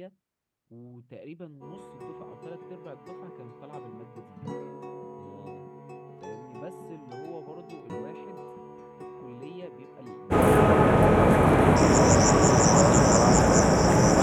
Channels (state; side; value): identical; both; correlation 1.00